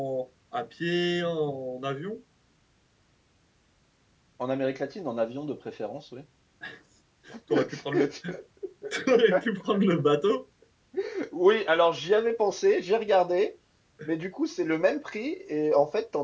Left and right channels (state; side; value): identical; both; correlation 1.00